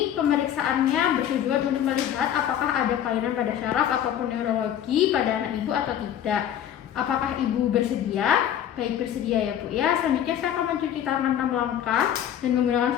pemeriksaannya bertujuan untuk melihat apakah ada kelainan pada syaraf ataupun neurologi pada anak ibu atau tidak. Apakah ibu bersedia? Baik, bersedia ya Bu ya. Selanjutnya saya akan mencuci tangan 6 langkah dan menggunakan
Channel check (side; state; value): right; quieter; 10.2 dB